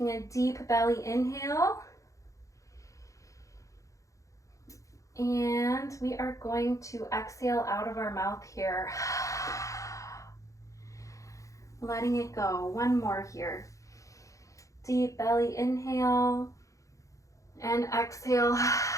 a deep belly inhale. And we are going to exhale out of our mouth here. Letting it go. One more here. Deep belly inhale and exhale.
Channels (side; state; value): right; late; 0.16 ms